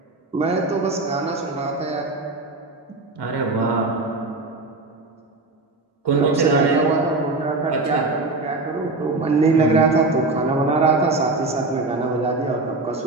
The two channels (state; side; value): quieter; left; 3.2 dB